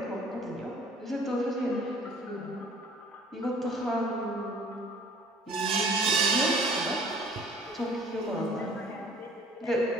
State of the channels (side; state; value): both; normal; correlation 0.53